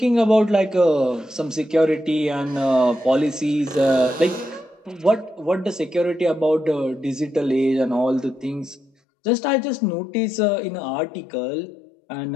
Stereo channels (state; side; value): drops out; right; at 8.9 s